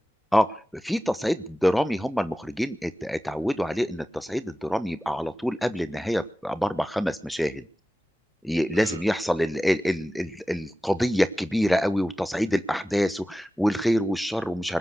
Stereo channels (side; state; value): both; normal; correlation 0.95